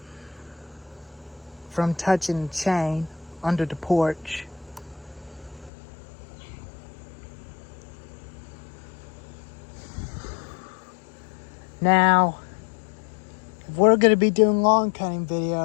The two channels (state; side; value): drops out; right; at 5.7 s